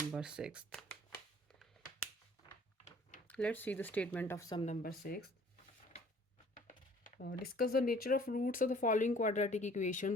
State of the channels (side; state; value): both; normal; correlation 0.54